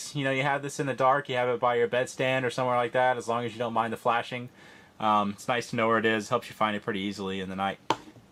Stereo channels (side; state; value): both; identical; correlation 1.00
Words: You know, you have this in the dark, you have it by your bedstand or somewhere like that, as long as you don't mind the flashing. It's nice to know where it is. Helps you find it pretty easily in the night.